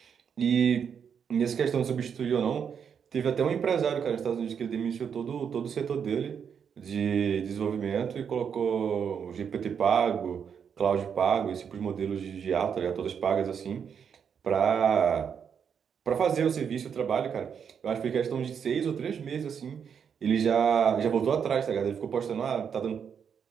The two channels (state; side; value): quieter; left; 7.3 dB